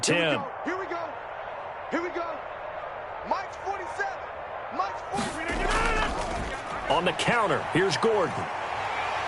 10. Here we go. Here we go. Mike's 47. Mike's 47. On the counter, here's Gordon.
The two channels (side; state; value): both; identical; correlation 1.00